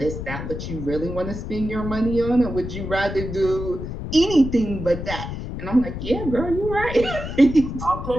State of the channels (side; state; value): left; noise; rumble, 7 dB below the sound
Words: that what you really want to spend your money on? Or would you rather do anything but that? And I'm like, yeah, girl, you're right. I'll